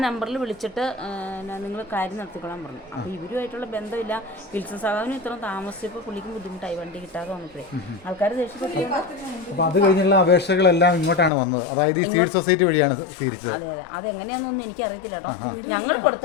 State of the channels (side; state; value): right; drops out; at 11.3 s